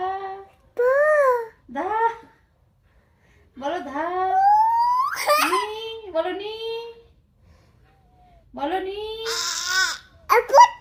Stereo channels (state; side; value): identical; both; correlation 1.00